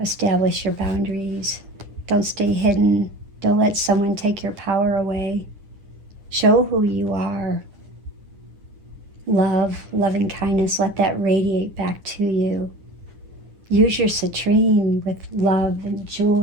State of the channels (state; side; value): late; left; 9.9 ms